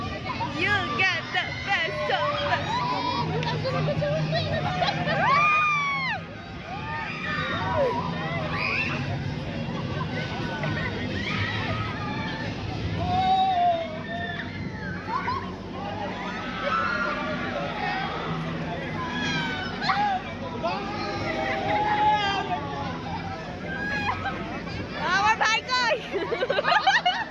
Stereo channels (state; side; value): identical; both; correlation 1.00